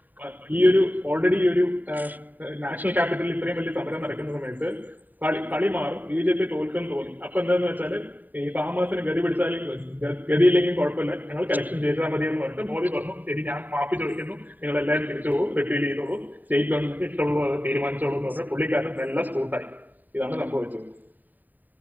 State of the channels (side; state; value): left; late; 0.087 ms